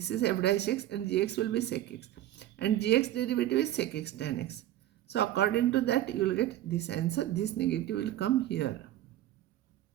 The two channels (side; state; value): left; quieter; 13.5 dB